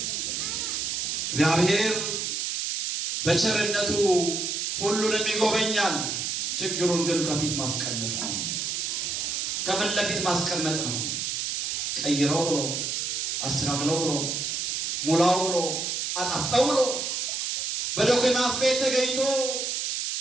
እግዚአብሔር በቸርነቱ ሁሉንም ይጎበኛል። ችግሩን ግን ከፊት ማስቀመጥ ነው፣ ከፊት ለፊት ማስቀመጥ ነው። ቀይረው ብሎ አስተካክለው ብሎ ሙላው ብሎ አጣፍጠው ብሎ በዶክመንት ቤት ተገኝቶ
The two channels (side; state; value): right; noise; hiss, 1 dB below the sound